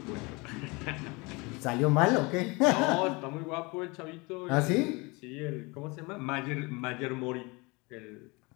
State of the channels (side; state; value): right; quieter; 26.6 dB